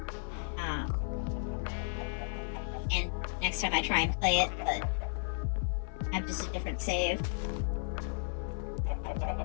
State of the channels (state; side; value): silent; right; 55 dB below the other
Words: And next time I try and play it, but have just a different save.